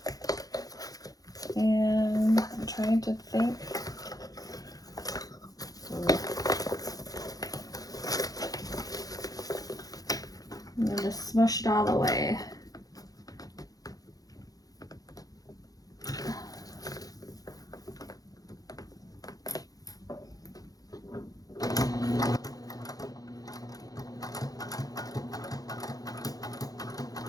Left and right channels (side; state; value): right; late; 0.18 ms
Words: And I'm trying to think. I'm going to smush it all the way.